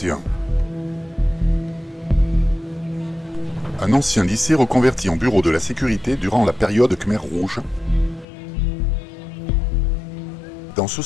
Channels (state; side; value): drops out; right; at 8.2 s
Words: Un ancien lycée reconverti en bureau de la sécurité durant la période Khmer Rouge. Dans ce